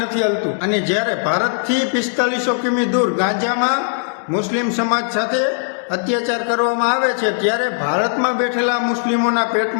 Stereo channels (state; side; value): silent; right; digital silence